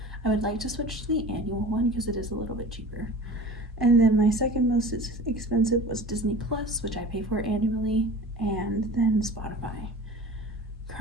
I would like to switch to the annual one because it is a little bit cheaper. And then my second most expensive was Disney Plus, which I pay for annually, and then Spotify.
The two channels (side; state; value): both; normal; correlation 0.38